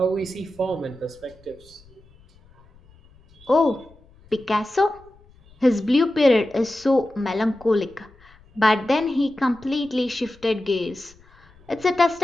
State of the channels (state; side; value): noise; left; rumble, 27 dB below the sound